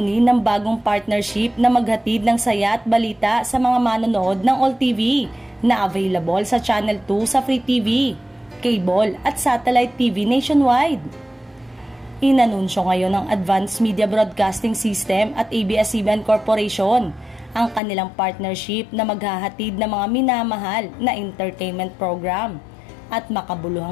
ng bagong partnership na maghatid ng saya at balita sa mga manonood ng All TV na available sa Channel 2 sa Free TV, cable at satellite TV nationwide. Inanunsyo ngayon ng Advanced Media Broadcasting System at ABS-CBN Corporation ang kanilang partnership na maghahatid ng mga minamahal na entertainment program at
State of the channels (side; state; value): right; drops out; at 17.8 s